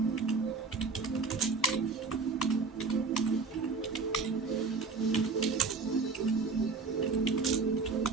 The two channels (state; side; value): quieter; left; 4.5 dB